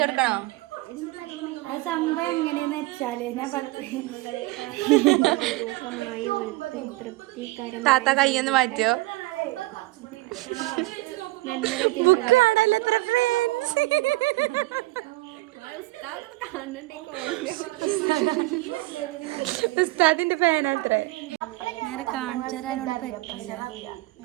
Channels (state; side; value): quieter; left; 20.4 dB